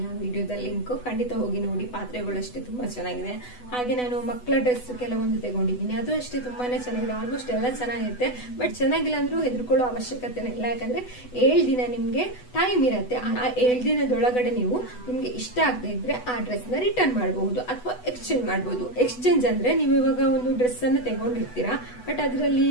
ಆ ವಿಡಿಯೋದ ಲಿಂಕ್, ಖಂಡಿತ ಹೋಗಿ ನೋಡಿ. ಪಾತ್ರೆಗಳು ಅಷ್ಟೇ ತುಂಬಾ ಚೆನ್ನಾಗಿದೆ. ಹಾಗೆ ನಾನು ಮಕ್ಕಳ ಡ್ರೆಸ್ ಕೆಲವೊಂದು ತಗೊಂಡಿದ್ದೀನಿ, ಅದು ಅಷ್ಟೇ ತುಂಬಾನೇ ಚೆನ್ನಾಗಿದೆ. ಆಲ್ಮೋಸ್ಟ್ ಎಲ್ಲ ಚೆನ್ನಾಗಿರುತ್ತೆ, ಬಟ್ ಚೆನ್ನಾಗಿಲ್ಲ ಅಂದ್ರೂ ಹೆದರ್ಕೊಳ್ಳೋ ಅವಶ್ಯಕತೆ ಇಲ್ಲ. ಯಾಕಂದ್ರೆ 7 ದಿನ ನಿಮ್ಗೆ ಟೈಮ್ ಇರುತ್ತೆ. ಆ 7 ದಿನದೊಳಗಡೆ ನೀವು ನಿಮ್ಗೆ ಇಷ್ಟ ಆಗದೆ ಇದ್ರೆ ಆ ಡ್ರೆಸ್ ನ ರಿಟರ್ನ್ ಮಾಡಬಹುದು ಅಥವಾ ಎಕ್ಸ್ಚೇಂಜ್ ಮಾಡಬಹುದು. ಎಕ್ಸ್ಚೇಂಜ್ ಅಂದ್ರೆ ನೀವು ಇವಾಗ ಒಂದು ಡ್ರೆಸ್ ಅನ್ನು ತಗೊಂಡಿರ್ತೀರಾ, ಬಟ್ ಅದರಲ್ಲಿ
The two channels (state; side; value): late; right; 8.1 ms